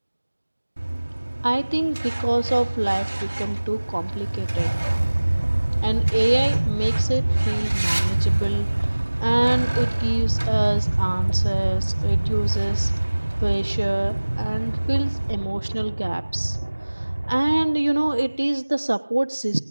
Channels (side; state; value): both; inverted; correlation -1.00